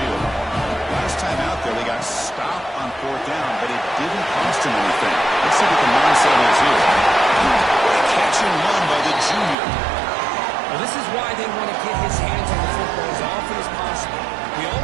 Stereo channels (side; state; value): left; drops out; at 9.6 s